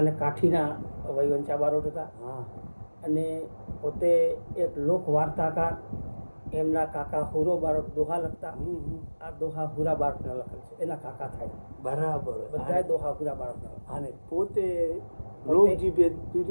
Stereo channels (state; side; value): inverted; both; correlation -1.00